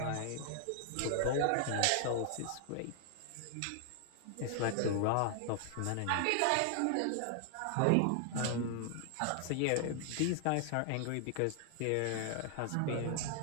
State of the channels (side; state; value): both; different; correlation 0.00